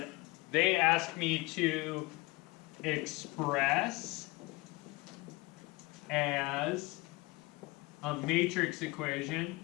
they asked me to express as a matrix equation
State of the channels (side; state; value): right; quieter; 23.3 dB